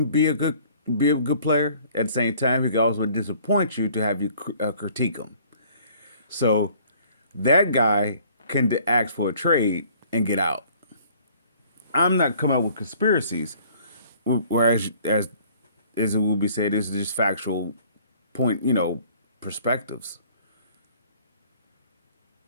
be a good player. At the same time, he can also disappoint you to have you critique him. So that guy can ask for a trade and get out. I'm not coming up with conspiracies, whereas as it will be said, this is just factual point, perspectives.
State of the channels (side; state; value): both; inverted; correlation -0.56